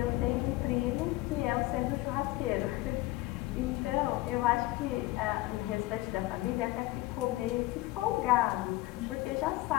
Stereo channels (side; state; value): right; quieter; 18.8 dB